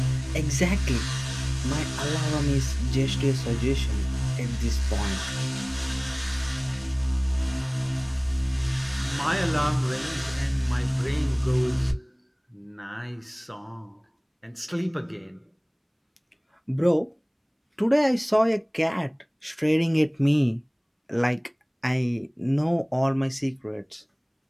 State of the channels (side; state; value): both; identical; correlation 1.00